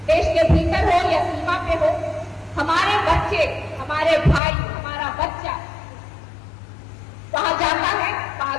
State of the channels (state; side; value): drops out; right; at 4.4 s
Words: देश के भीतर हो या सीमा पे हो, हमारे बच्चे, हमारे भाई, हमारा बच्चा वहां जाता है,